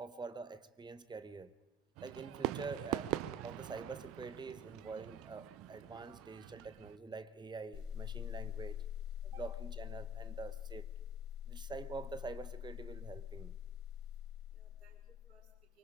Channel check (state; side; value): normal; both; correlation 0.45